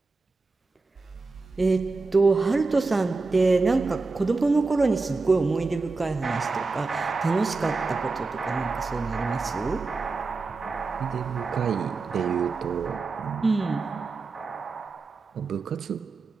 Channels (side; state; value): left; quieter; 3.9 dB